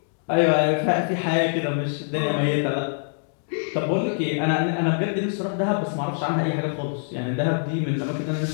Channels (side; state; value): right; silent; digital silence